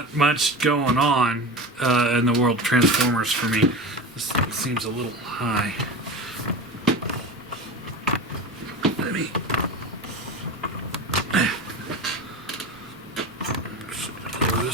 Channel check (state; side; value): normal; both; correlation 0.28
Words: much going on in the world of Transformers for me. This seems a little high. Let me... lower